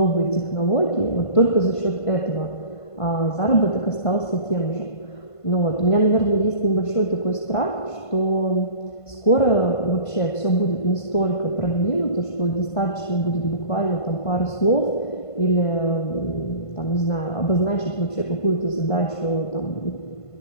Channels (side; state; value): right; late; 1.5 ms